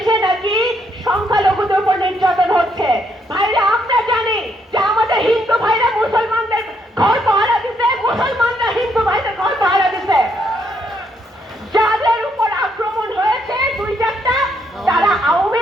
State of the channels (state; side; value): normal; both; correlation 0.73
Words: নাকি সংখ্যালঘুদের উপর নির্যাতন হচ্ছে। ভাইরা, আমরা জানি যে আমাদের হিন্দু ভাইরা মুসলমানদের ঘর পাহারা দিতে, মুসলমানরা হিন্দু ভাইদের ঘর পাহারা দিতে। যাদের উপর আক্রমণ হয়েছে 2-4টা, তারা আওয়ামী